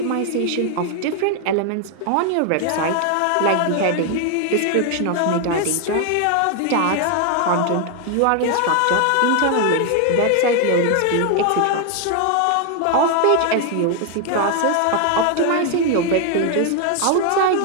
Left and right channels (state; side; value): different; both; correlation 0.01